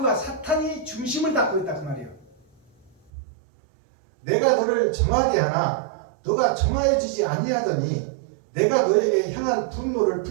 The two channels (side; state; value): left; drops out; at 3.1 s